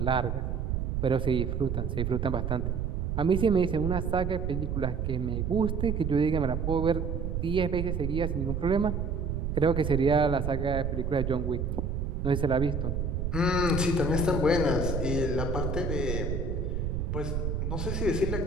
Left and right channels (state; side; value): noise; right; rumble, 1 dB below the sound